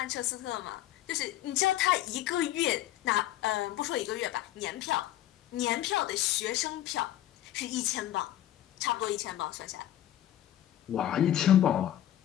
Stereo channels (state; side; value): quieter; right; 12.8 dB